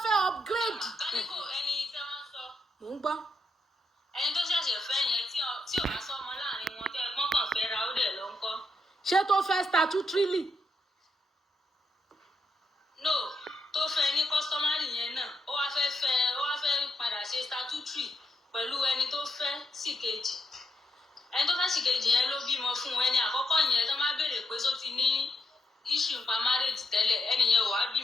fẹ́ upgrade. Káníkò ẹni tẹ́ wọ́n sọ. Mò ń gbọ́. Ẹni tó ṣẹ̀ṣẹ̀ fẹ́ yẹn tí ò bá sọmọ láàrin wọn tẹ́ ẹ̀gbọ́n kan fẹ́ ra ó dẹ̀ ló ń kọ́. Ṣé tó fẹ́ statutorily? No, tó fẹ́ ní customary yẹn náà ó wá fẹ́ padà ṣe statutory pẹ̀lú ẹni tó fẹ́ sí kejì. Ẹni tó fẹ́ sí kejì yẹn ló bímọ fún ẹni àkọ́kọ́ yẹn tó máa béèrè pé só ti ní issue nípa marriage tẹ́lẹ̀ ẹni yẹn ò wá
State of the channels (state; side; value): normal; both; correlation 0.80